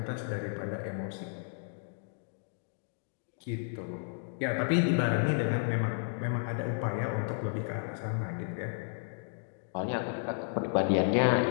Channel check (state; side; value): silent; right; digital silence